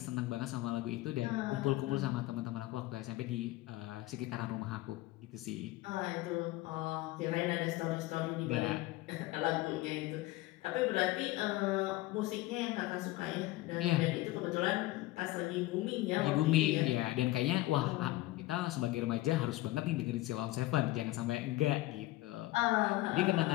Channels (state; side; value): quieter; right; 18.0 dB